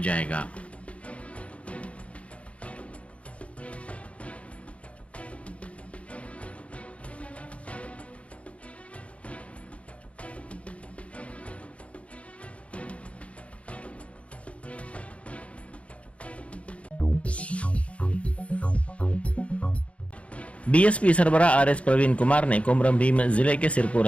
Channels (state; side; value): late; right; 0.063 ms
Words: बीएसपी सरबरा आरएस प्रवीण कुमार ने कोमरम भीम जिले के सिरपुर